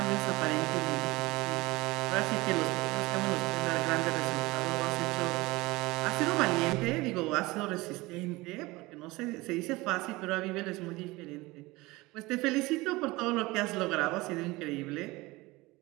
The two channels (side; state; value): left; quieter; 21.3 dB